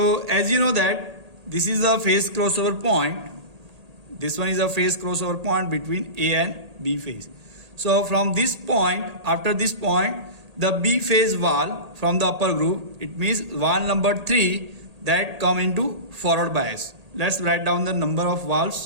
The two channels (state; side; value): late; left; 1.8 ms